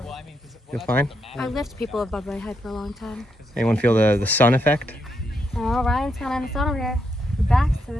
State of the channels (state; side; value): normal; both; correlation 0.80